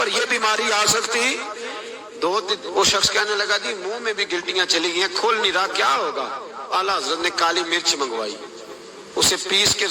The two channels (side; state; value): both; identical; correlation 1.00